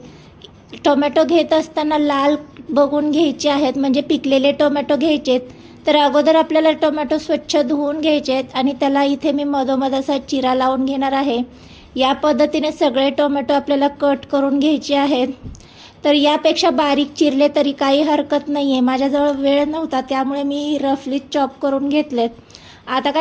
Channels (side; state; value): both; identical; correlation 1.00